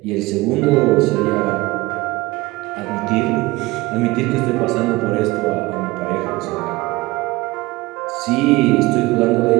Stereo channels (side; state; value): left; quieter; 20.8 dB